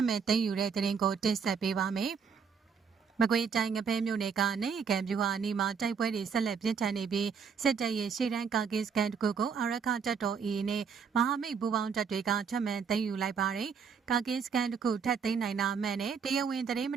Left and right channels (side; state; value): left; quieter; 6.2 dB